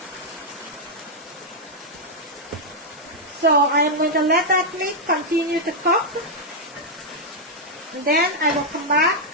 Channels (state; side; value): normal; both; correlation -0.03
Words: So I am going to let that meat continue to cook. And then I will come back